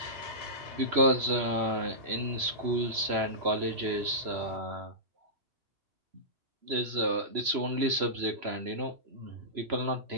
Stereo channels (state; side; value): late; left; 3.0 ms